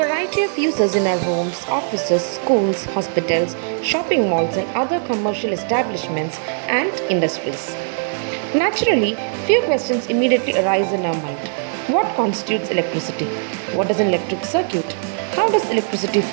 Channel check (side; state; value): left; silent; digital silence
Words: variety of uses in our homes, offices, schools, hospitals, shopping malls, and other commercial establishments and industries. Naturally, few questions immediately arise in our mind. What constitutes electricity? What is an electric circuit? How does electricity